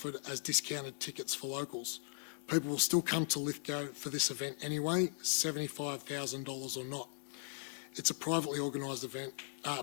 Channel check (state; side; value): silent; right; digital silence